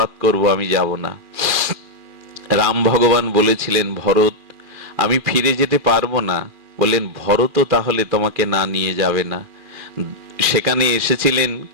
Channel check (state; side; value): late; left; 2.4 ms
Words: করব, আমি যাব না। রাম ভগবান বলেছিলেন, ভরত আমি ফিরে যেতে পারবো না। বললেন, ভরত তাহলে তোমাকে না নিয়ে যাবে না। সেখানে এসেছিলেন